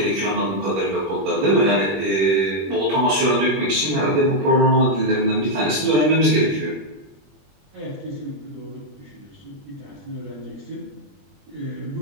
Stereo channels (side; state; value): left; late; 21 ms